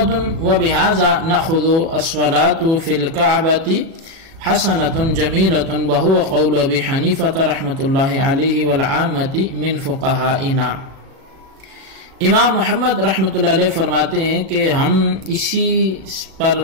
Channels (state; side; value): late; left; 37 ms